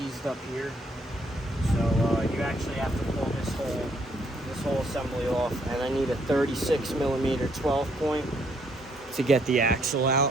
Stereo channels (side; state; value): both; normal; correlation 0.70